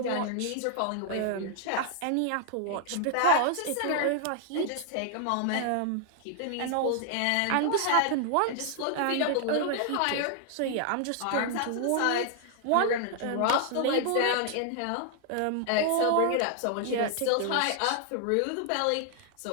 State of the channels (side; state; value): both; different; correlation 0.00